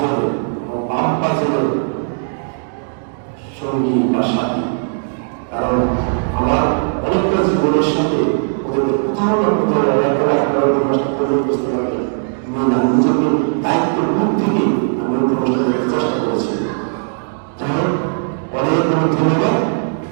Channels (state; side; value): silent; left; digital silence